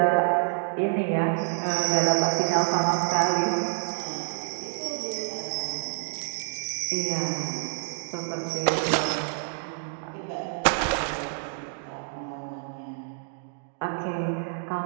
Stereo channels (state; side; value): silent; left; digital silence